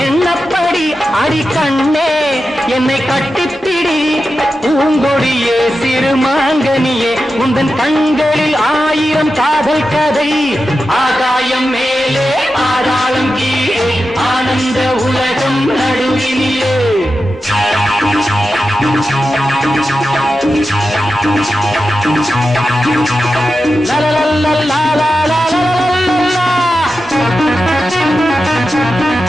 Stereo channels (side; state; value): both; normal; correlation 0.91